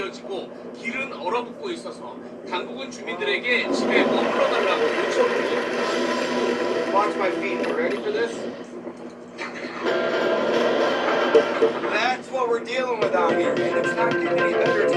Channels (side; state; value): both; identical; correlation 1.00